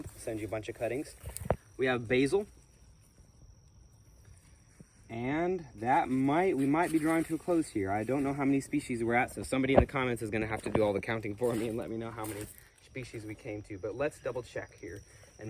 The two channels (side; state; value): both; identical; correlation 1.00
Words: I'll send you a bunch of cuttings. We have basil. And we might be drawing to a close here. I don't know how many species we're at, so somebody in the comments is going to have to do all the counting for me and let me know how many species we came to. But let's double check here and